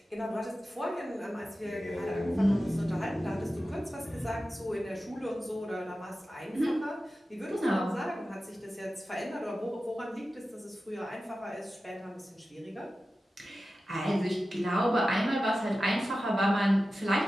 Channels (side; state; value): both; normal; correlation 0.94